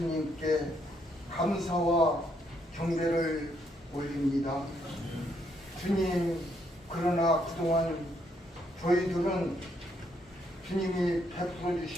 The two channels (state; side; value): normal; both; correlation 0.73